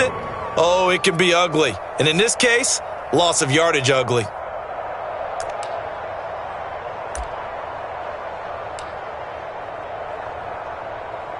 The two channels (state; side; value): identical; both; correlation 1.00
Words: oh, it can be ugly. And in this case, loss of yardage ugly.